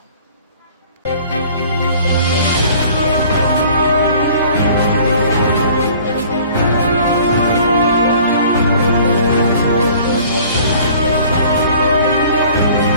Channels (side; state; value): both; inverted; correlation -0.50